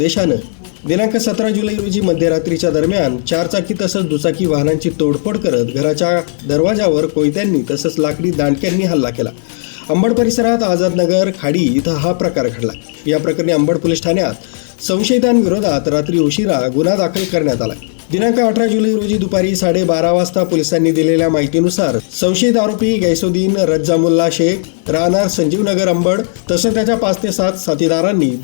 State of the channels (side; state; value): right; silent; digital silence